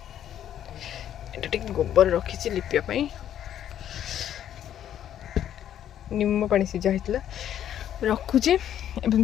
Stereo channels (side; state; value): right; quieter; 10.6 dB